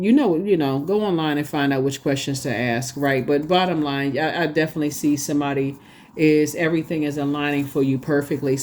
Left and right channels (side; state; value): both; identical; correlation 1.00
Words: online and find out which questions to ask, right? But bottom line, I definitely see somebody is everything is aligning for you perfectly.